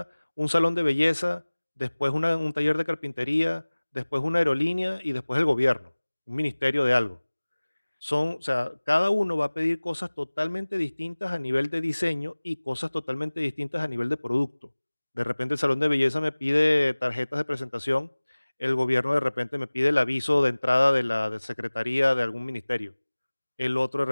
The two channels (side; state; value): both; inverted; correlation -1.00